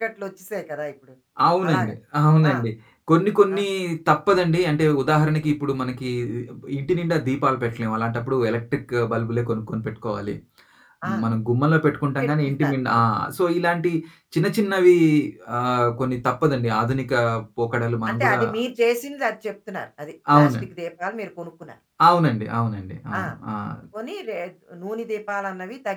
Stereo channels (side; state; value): both; identical; correlation 1.00